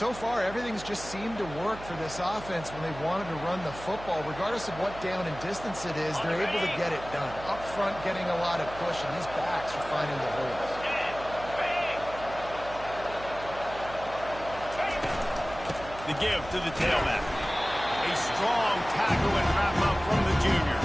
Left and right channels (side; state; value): right; noise; hum, 14 dB below the sound